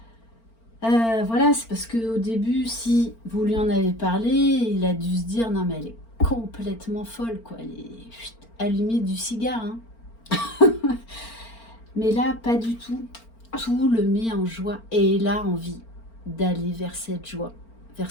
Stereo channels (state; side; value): late; right; 4.4 ms